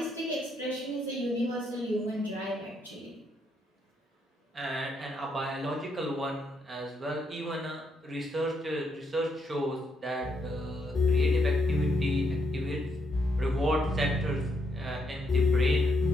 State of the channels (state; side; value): normal; both; correlation 0.77